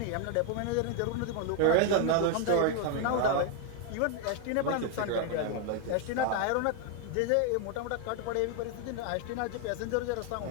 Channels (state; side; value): different; both; correlation 0.01